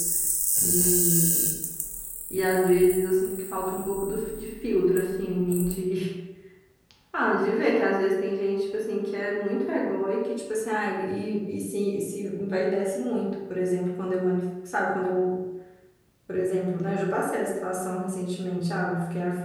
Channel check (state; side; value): identical; both; correlation 1.00